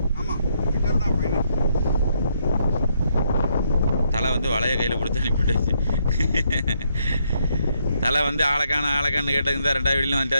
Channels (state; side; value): inverted; both; correlation -0.75